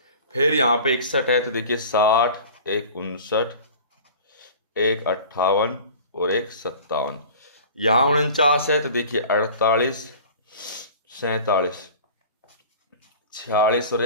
फिर यहाँ पे 61 है तो देखिए 60, एक 59, एक 58 और एक 57। यहाँ 49 है तो देखिए 48, 47, 46 और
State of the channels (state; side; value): inverted; both; correlation -0.41